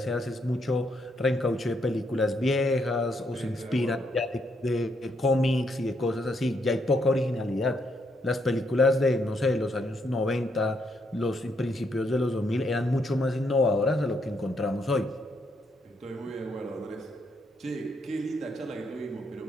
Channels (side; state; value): both; normal; correlation 0.76